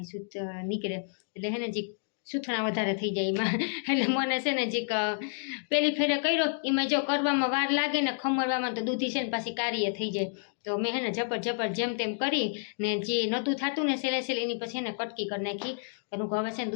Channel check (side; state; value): right; silent; digital silence